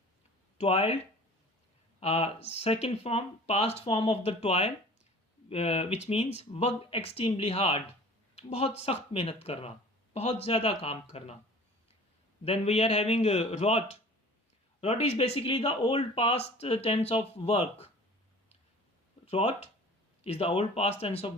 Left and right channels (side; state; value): both; normal; correlation 0.45